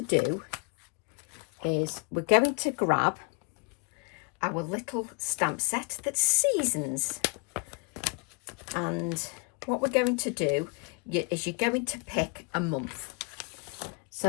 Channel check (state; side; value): quieter; right; 33.2 dB